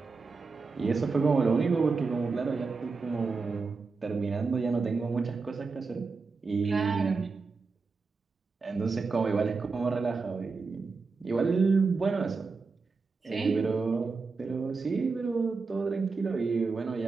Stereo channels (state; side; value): quieter; left; 4.4 dB